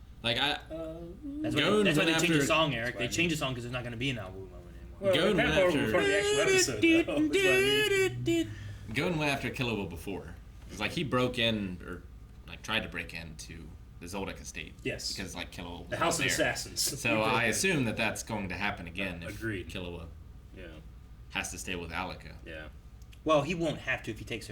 like That's Gon why they went changed the after- song, Eric. They That's changed the song because there's not going to be an Awu moment anymore. Well, Gon that went part after- before the actual episode, though, is what I mean. Gon went after Killua before. It's like he broke in, or like tried to break into the Zoldyck estate. Yes. Because like Killua was The House of there. Assassins. So I assume that that's going to happen again if Agreed. Killua Yeah. has to stay with Alika. Yeah. Well, he won't have to if he takes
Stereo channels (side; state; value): both; identical; correlation 1.00